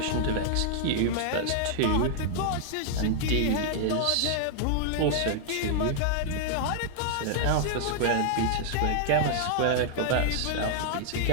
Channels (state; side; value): different; both; correlation -0.01